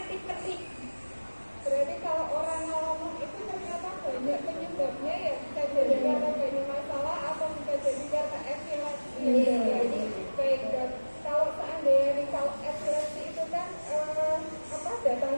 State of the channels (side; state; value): both; inverted; correlation -1.00